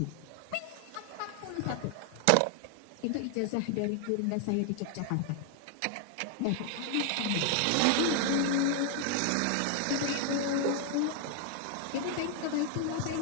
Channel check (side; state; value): both; different; correlation 0.00